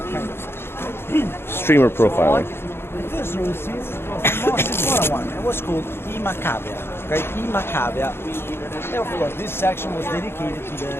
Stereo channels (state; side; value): late; right; 0.11 ms